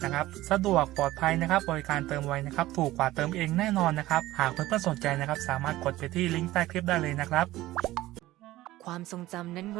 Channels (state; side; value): quieter; left; 16.5 dB